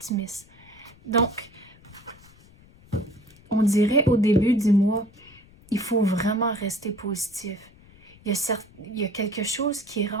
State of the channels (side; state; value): left; noise; rumble, 25 dB below the sound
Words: Donc, on dirait au début du mois, il faut vraiment rester positif. Il y a quelque chose qui